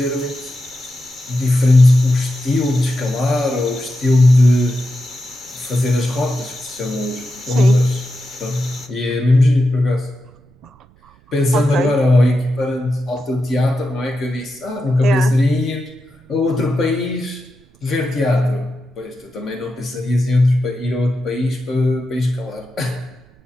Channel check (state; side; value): noise; right; rumble, 29 dB below the sound